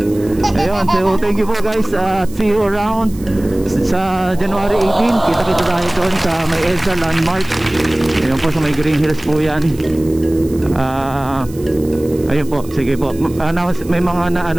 Ayun, so thank you po guys. See you around sa January 18. Kita-kita tayo doon sa may EDSA Landmark. Ayun po sa may Green Hills po yan. Ayun po, sige po. May mga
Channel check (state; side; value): noise; right; hiss, 21 dB below the sound